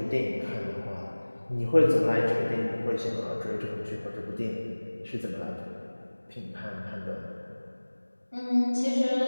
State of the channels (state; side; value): inverted; both; correlation -1.00